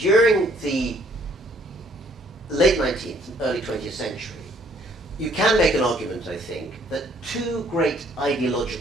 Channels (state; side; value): normal; both; correlation 0.63